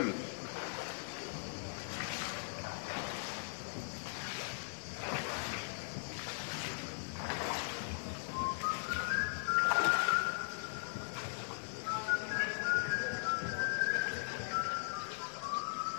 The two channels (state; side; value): silent; right; digital silence